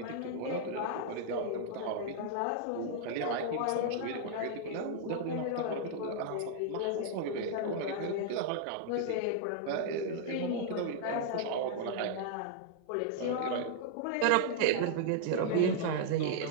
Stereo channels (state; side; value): different; both; correlation -0.01